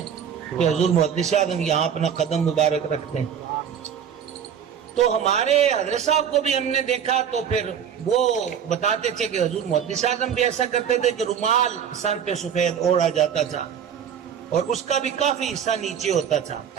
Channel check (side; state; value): left; quieter; 8.3 dB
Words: کہ حضور محدث اعظم یہاں اپنا قدم مبارک رکھتے ہیں. تو ہمارے حضرت صاحب کو بھی ہم نے دیکھا تو پھر وہ بتاتے تھے کہ حضور محدث اعظم بھی ایسا کرتے تھے کہ رومال سر پہ سفید اوڑھا جاتا تھا اور اس کا بھی کافی حصہ نیچے ہوتا تھا